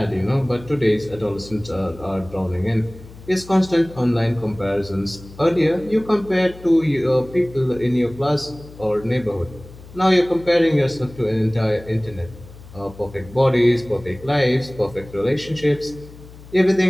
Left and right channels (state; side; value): noise; left; hum, 19 dB below the sound